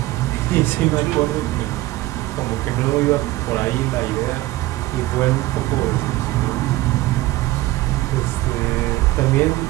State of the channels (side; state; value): left; quieter; 17.8 dB